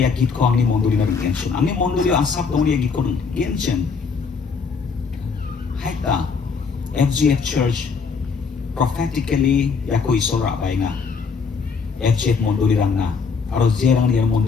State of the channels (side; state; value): right; quieter; 5.3 dB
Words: ya git ko angni mondoli na intention. Angni mondoli asap dong de ya git ko intention. Haita FGF Church prophetically ya ko iso ra bai nga. FGF mondoli rang na aro jerang dia